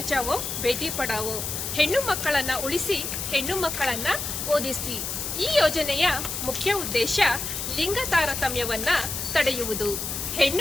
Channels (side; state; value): left; noise; hiss, 4 dB below the sound